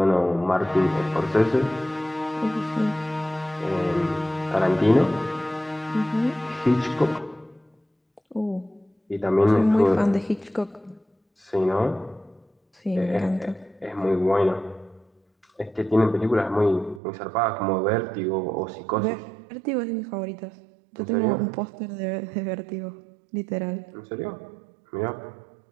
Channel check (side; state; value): left; drops out; at 17.0 s